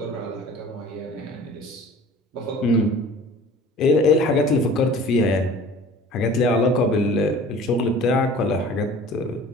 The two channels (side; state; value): both; normal; correlation 0.45